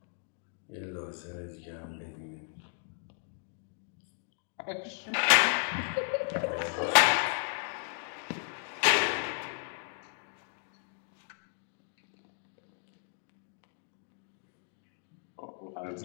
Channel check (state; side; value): silent; right; 55 dB below the other